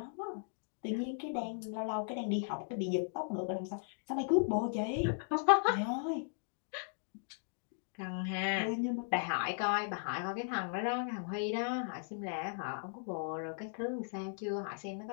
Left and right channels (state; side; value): silent; right; digital silence